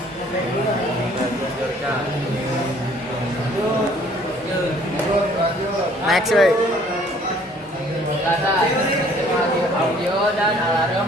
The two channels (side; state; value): both; normal; correlation 0.58